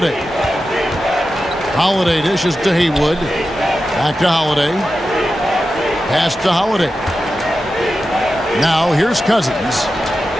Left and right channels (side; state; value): both; normal; correlation 0.91